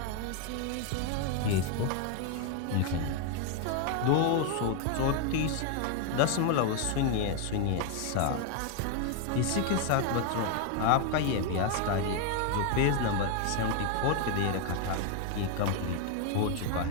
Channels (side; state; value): both; different; correlation 0.01